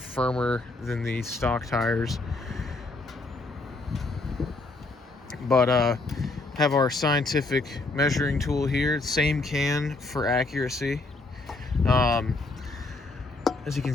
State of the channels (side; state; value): right; quieter; 3.2 dB